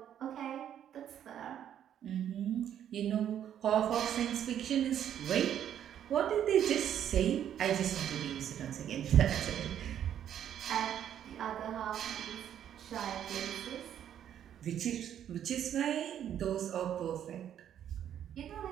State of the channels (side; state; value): left; quieter; 10.0 dB